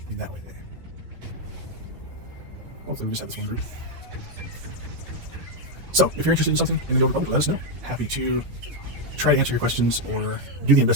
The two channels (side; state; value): left; late; 12 ms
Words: In that way. Hopefully we just have this one group. So, if you're interested in something in the Old Republic, let us know. Happy to try to answer your questions or do the